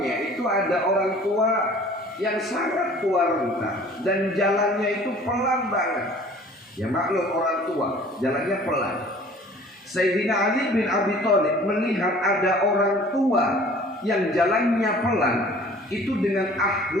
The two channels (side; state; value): both; normal; correlation 0.49